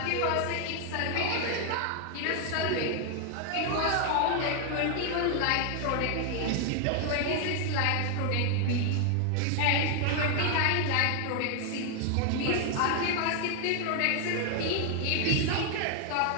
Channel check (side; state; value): both; different; correlation 0.00